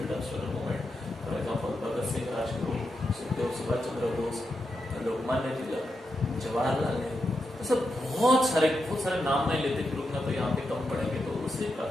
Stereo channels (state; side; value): normal; both; correlation 0.86